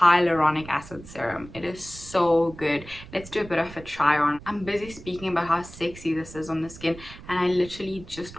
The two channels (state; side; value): noise; right; rumble, 17 dB below the sound